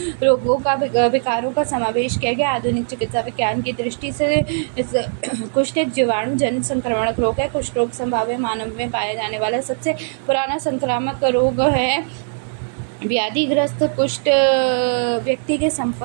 रोगों का विकारों का समावेश किया गया। आधुनिक चिकित्सा विज्ञान की दृष्टि से कुष्ठ एक जीवाणु जनित संक्रमणक रोग है। कुष्ठ रोग संभाव्य मानव में पाया जाने वाला सबसे पुराना संक्रामक रोग है। व्याधिग्रस्त कुष्ठ व्यक्ति के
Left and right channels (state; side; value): silent; left; digital silence